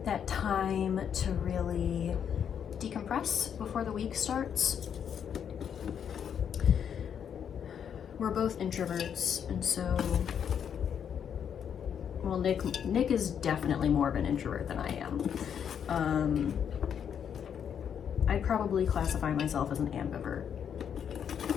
that time to really decompress before the week starts. We're both introverts, and so, well, Nick is definitely more of an introvert than I am. I'd probably classify myself as an ambivert.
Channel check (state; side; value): quieter; right; 8.2 dB